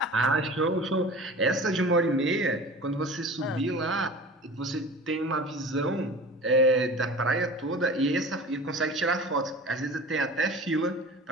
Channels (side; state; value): both; normal; correlation 0.38